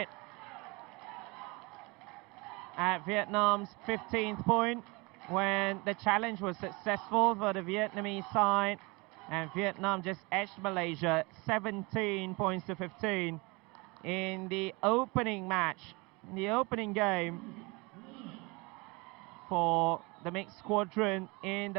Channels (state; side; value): quieter; left; 26.5 dB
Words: at Vietnam's 15th point when the challenge was successful for the Vietnamese side, and Vietnam just edged Malaysia 17 points to 15 in the opening match, in the opening game for the mixed squadron in